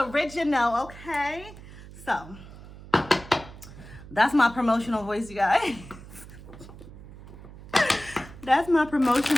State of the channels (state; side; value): noise; right; hum, 17 dB below the sound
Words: okay? So, that's my promotional voice, you guys. That's my